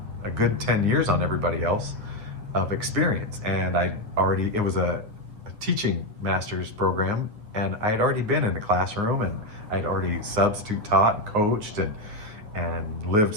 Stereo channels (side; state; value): left; late; 9.7 ms